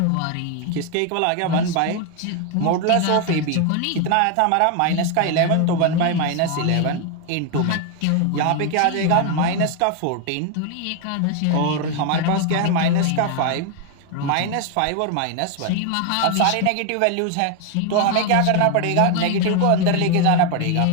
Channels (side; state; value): both; different; correlation 0.01